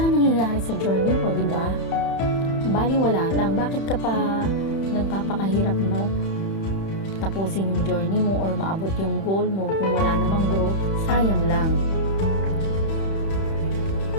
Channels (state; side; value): late; right; 31 ms